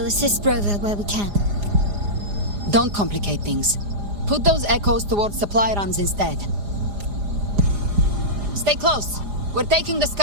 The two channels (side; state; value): left; late; 4.9 ms